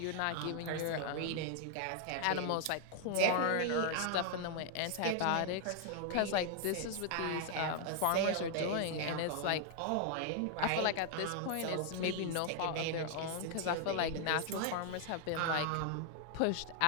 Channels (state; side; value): different; both; correlation 0.00